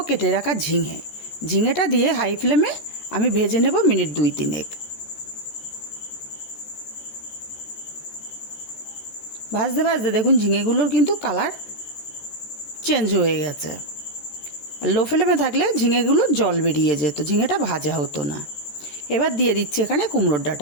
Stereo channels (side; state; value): right; late; 14 ms